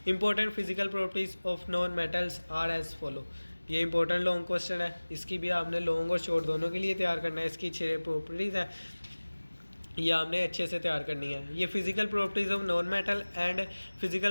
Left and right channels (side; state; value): both; inverted; correlation -1.00